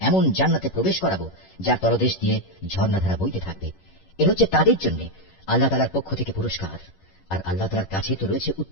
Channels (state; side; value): late; right; 11 ms